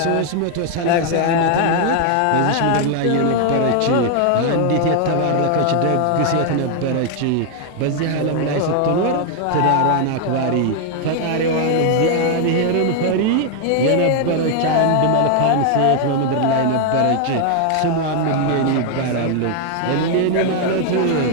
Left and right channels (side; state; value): both; different; correlation 0.00